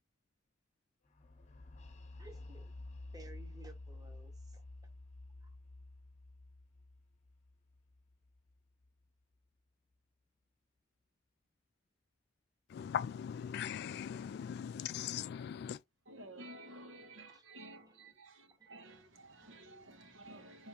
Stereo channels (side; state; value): right; quieter; 6.2 dB